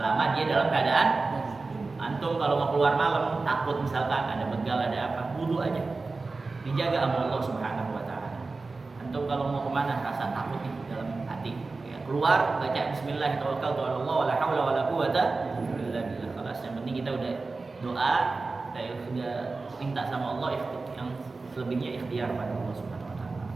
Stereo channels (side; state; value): left; quieter; 3.8 dB